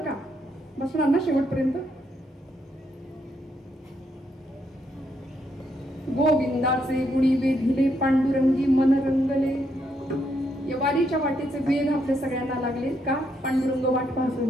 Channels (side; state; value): both; normal; correlation 0.76